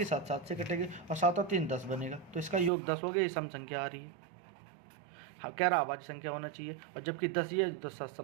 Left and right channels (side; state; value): left; drops out; at 2.7 s